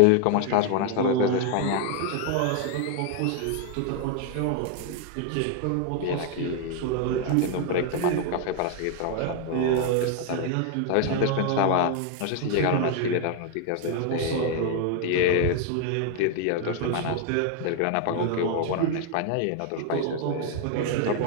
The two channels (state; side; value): different; both; correlation 0.00